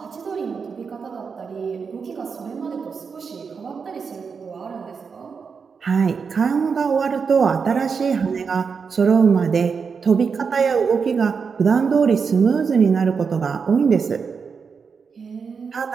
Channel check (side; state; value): left; quieter; 5.7 dB